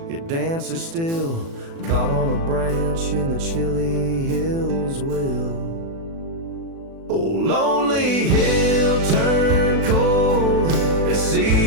it dances still, caught on a branch in the chilly hills will. Oh, lonely hill turned cold, this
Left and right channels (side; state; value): left; late; 36 ms